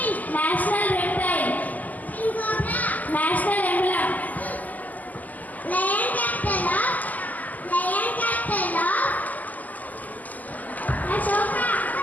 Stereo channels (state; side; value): late; right; 0.080 ms